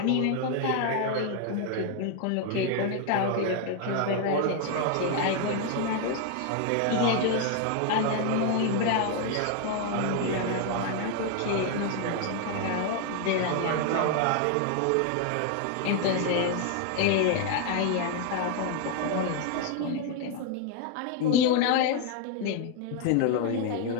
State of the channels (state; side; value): different; both; correlation 0.00